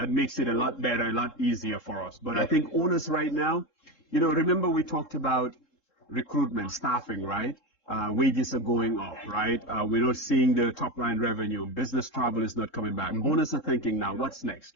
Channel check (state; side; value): late; right; 3.7 ms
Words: makes it a lot better, a lot easier for us. But I think owners right now, remember we talked about recruitment, staffing, right? Wages are going up, right? We're not seeing the top line revenue. Business travel is not coming back. Owners are thinking now, what's